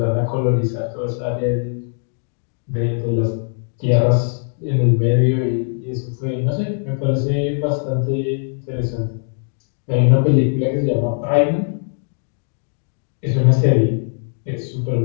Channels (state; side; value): silent; right; digital silence